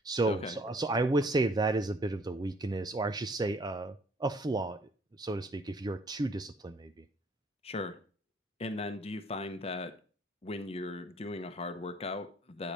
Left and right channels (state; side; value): normal; both; correlation 0.59